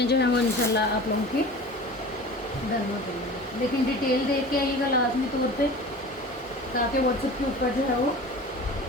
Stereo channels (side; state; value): both; normal; correlation 0.38